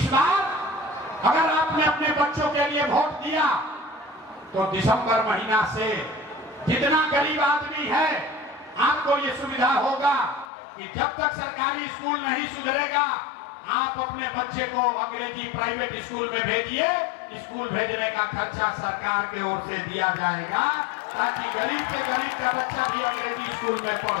बार अगर आपने अपने बच्चों के लिए वोट दिया तो दिसंबर महीना से जितना गरीब आदमी है, आपको ये सुविधा होगा कि जब तक सरकारी स्कूल नहीं सुधरेगा, आप अपने बच्चे को अंग्रेजी प्राइवेट स्कूल में भेजिए। स्कूल भेजने का खर्चा सरकार की ओर से दिया जाएगा, ताकि गरीब के गरीब का बच्चा भी अंग्रेजी स्कूल में पढ़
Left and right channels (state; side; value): drops out; right; at 10.5 s